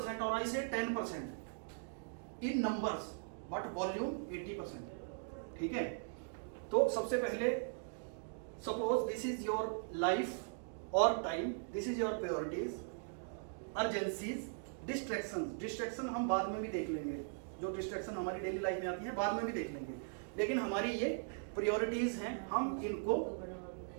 और आई से 10% इन नंबर्स, बट वॉल्यूम 80%, ठीक है। तो सबसे पहले suppose this is your life और time, this is your priorities, urgencies, distraction हम बाद में भी देख लेंगे, जो डिस्ट्रैक्शन हमारी डेली लाइफ में आती है बाद में भी देख लेंगे, लेकिन हमारी ये प्रायोरिटीज हैं, हम इनको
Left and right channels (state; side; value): silent; left; digital silence